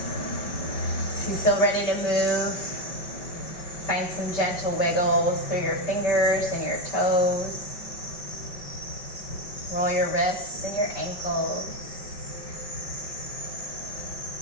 If you feel ready to move, find some gentle wiggles through your fingers and your toes. Roll your wrists and your ankles.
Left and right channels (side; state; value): right; late; 5.1 ms